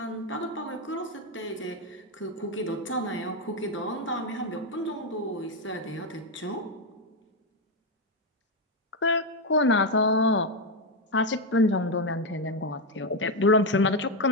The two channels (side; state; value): both; normal; correlation 0.06